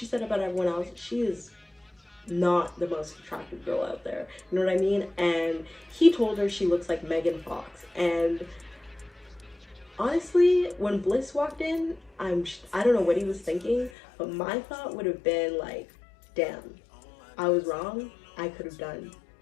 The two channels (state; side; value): drops out; right; at 13.9 s